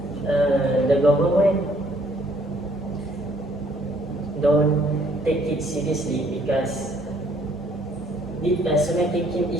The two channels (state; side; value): normal; both; correlation 0.63